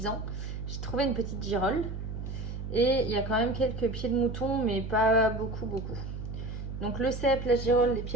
J'ai trouvé une petite girole. Et il y a quand même quelques pieds de mouton, mais pas beaucoup. Donc le cèpe, la girole, les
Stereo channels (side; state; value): right; noise; hum, 7 dB below the sound